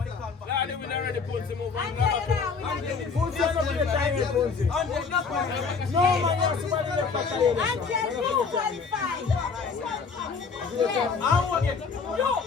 they will already put some over. No man, you're somebody left back there. No.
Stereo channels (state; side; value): quieter; right; 5.2 dB